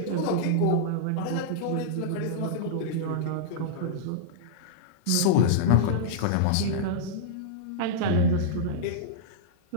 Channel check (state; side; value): different; both; correlation -0.02